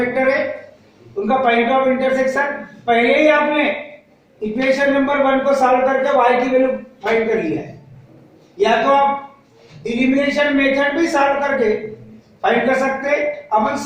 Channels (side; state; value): both; identical; correlation 1.00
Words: है उनका, पॉइंट ऑफ इंटरसेक्शन। पहले ही आपने इक्वेशन नंबर 1 को सॉल्व करके y की वैल्यू फाइंड कर लिया है, या तो आप एलिमिनेशन मेथड भी सॉल्व करके फाइंड कर सकते हैं। अपन